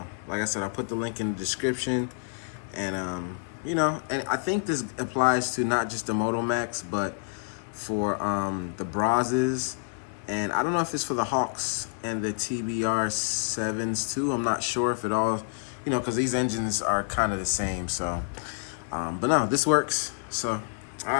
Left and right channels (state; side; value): silent; right; 58 dB below the other